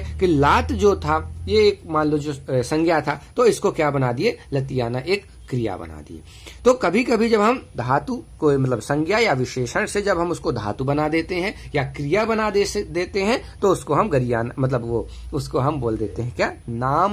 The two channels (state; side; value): identical; both; correlation 1.00